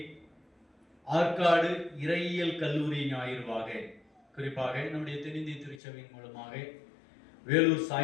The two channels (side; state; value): right; drops out; at 5.8 s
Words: ஆற்காடு இறையியல் கல்லூரி ஞாயிறுவாக, குறிப்பாக நம்முடைய தென்னிந்திய திருச்சபையின் மூலமாக வேலூர்